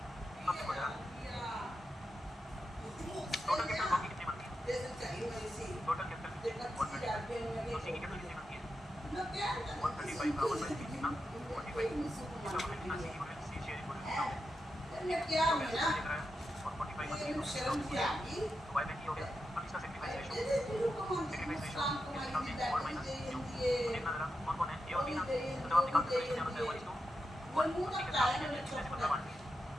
अब देखो जरा टोटल कैपिटल बाकी कितनी बनती है? टोटल कैपिटल 135, तो सी की कैपिटल कितनी बनती है? 135 का 1/3 कितना? 45, इसका मतलब कितना? सी की गुडविल, सी शेयर गुडविल कितना हो गया? तो पैसे लेकर आया और 45 तो बाय बैंक ही हो गया। अब इसका सेक्रीफाइस रेशियो और माइनस क्यू, तो देखना जरा कौन कौन है ए और बी ना, तो जब आप निकालते हो क्या होता है 1:1, और सी के साथ कितने से बदला बांट दिया,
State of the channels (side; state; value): both; normal; correlation 0.88